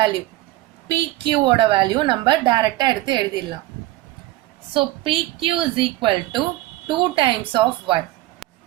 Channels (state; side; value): quieter; left; 17.5 dB